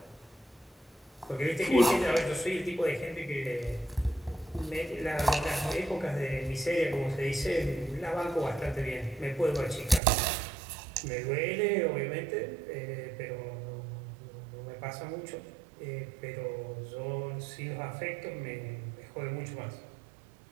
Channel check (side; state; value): left; drops out; at 10.0 s